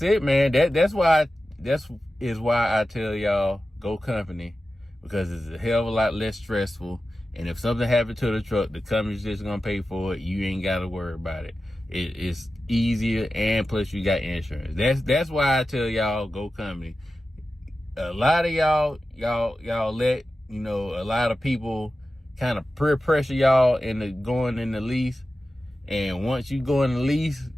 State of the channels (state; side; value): normal; both; correlation 0.93